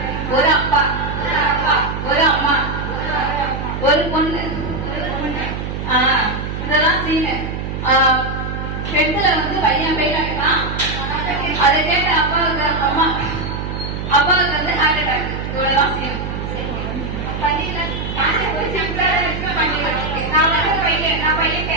ஒரு அப்பா, ஒரு அம்மா, ஒரு பொண்ணு. இதெல்லாம் சீனு. பெண்ல வந்து பையன் பெயில் ஆகிட்டான். அதை கேட்ட அப்பாவுக்கு அப்பாவுக்கு வந்து ஹார்ட் அட்டாக். இவ்வளவுதான் சீன். நான் பையன்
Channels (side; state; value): right; noise; hum, 5 dB below the sound